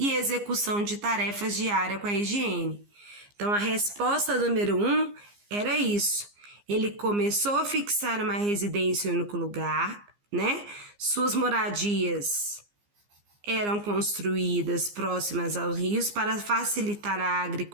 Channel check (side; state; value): left; late; 15 ms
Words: execução de tarefas diárias com a higiene. Então, a resposta número 1 era isso. Ele começou a fixar uma residência em um único lugar, né? Suas moradias eram construídas próximas aos rios para facilitar a